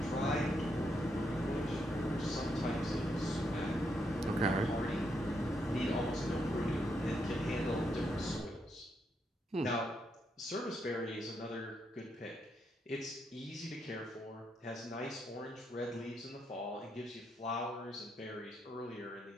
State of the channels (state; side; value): normal; both; correlation 0.79